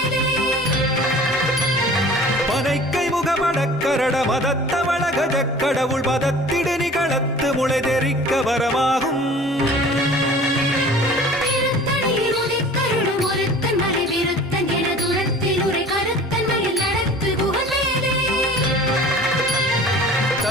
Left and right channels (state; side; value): normal; both; correlation 0.45